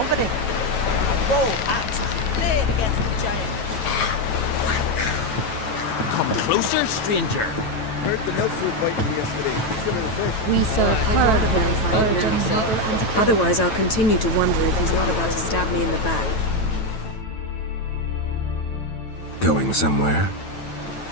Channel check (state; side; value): late; right; 9.1 ms